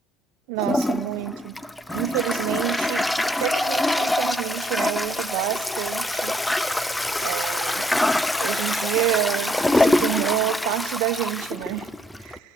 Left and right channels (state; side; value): normal; both; correlation 0.71